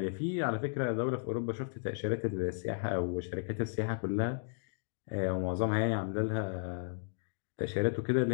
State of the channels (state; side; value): silent; right; digital silence